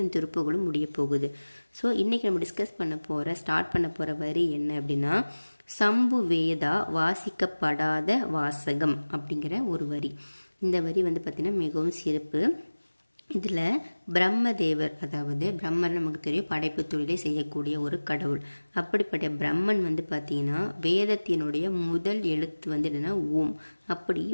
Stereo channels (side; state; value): both; inverted; correlation -1.00